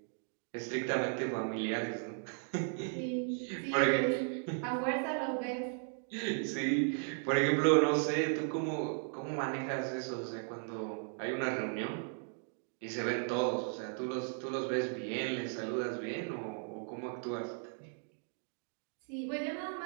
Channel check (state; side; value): silent; left; 54 dB below the other